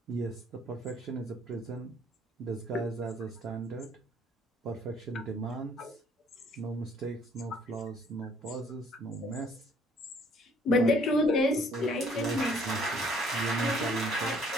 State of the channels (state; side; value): normal; both; correlation 0.61